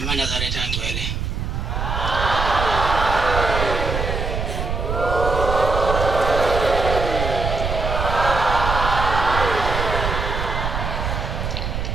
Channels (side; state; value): right; noise; rumble, 3 dB below the sound